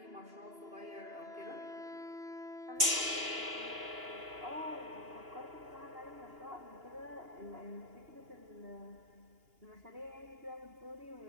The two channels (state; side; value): late; left; 2.8 ms